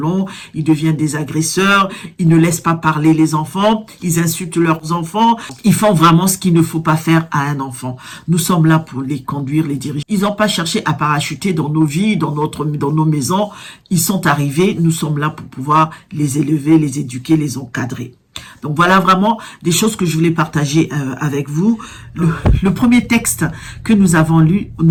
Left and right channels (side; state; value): both; identical; correlation 1.00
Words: ils deviennent des agresseurs, ils ne laissent pas parler les enfants, ils insultent leurs enfants, ils font vraiment ce qu'il ne faut pas faire à un enfant. Nous sommes là pour les conduire, les diriger. Ils n'ont pas cherché à parachuter dans nos vies, dans nos maisons. Ils sont arrivés, nous sommes là pour pouvoir les élever, les éduquer, les encadrer. Donc voilà vraiment des choses que je voulais partager avec vous. Le premier texte que nous avons lu